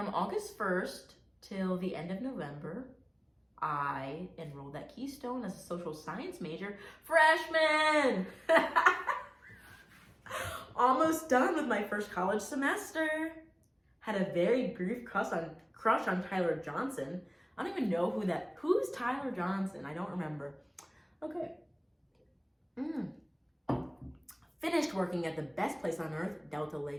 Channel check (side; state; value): both; identical; correlation 1.00